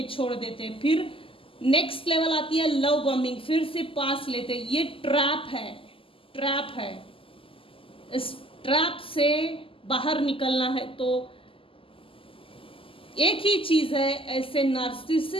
हैं, फिर नेक्स्ट लेवल आती है लव बॉम्बिंग, फिर से पास लेते हैं। ये ट्रैप है। इस ट्रैप से बाहर निकलना है तो एक ही चीज है, ऐसे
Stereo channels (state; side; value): late; right; 0.26 ms